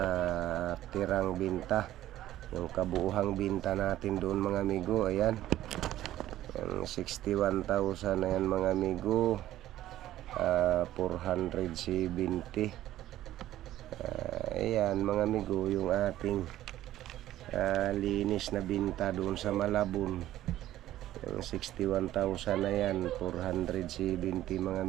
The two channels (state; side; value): quieter; left; 13.8 dB